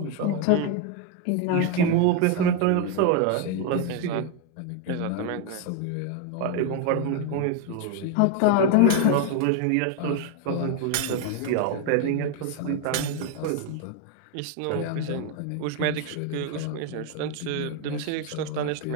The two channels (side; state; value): both; different; correlation 0.01